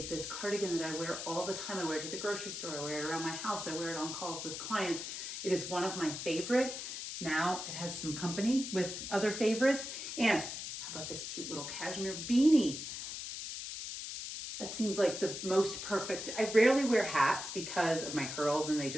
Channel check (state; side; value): noise; left; hiss, 6 dB below the sound